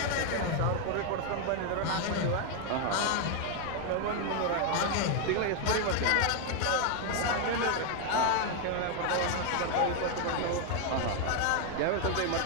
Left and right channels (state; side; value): different; both; correlation 0.01